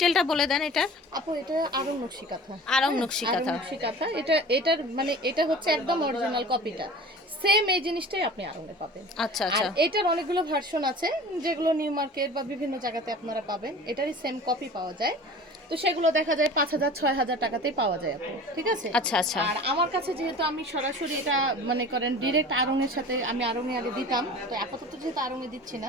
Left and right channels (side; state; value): both; normal; correlation 0.40